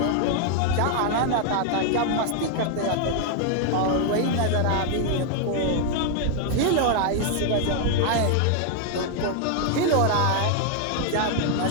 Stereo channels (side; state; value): both; different; correlation 0.00